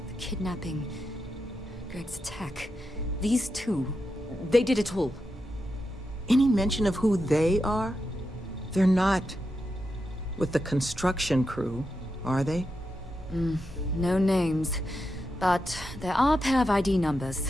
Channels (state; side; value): normal; both; correlation 0.87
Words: the kidnapping, Greg's attack. These two, they did it all. Any mention of who they are? They're not with the construction crew, are they? No names. But there are a pair of ID